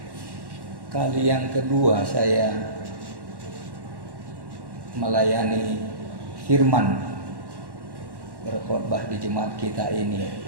kali yang kedua saya melayani firman, berkhotbah di jemaat kita ini.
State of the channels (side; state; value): left; late; 1.1 ms